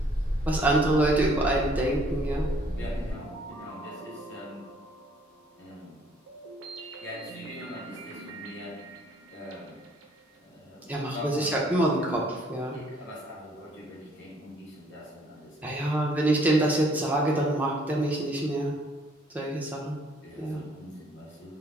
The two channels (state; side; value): normal; both; correlation 0.62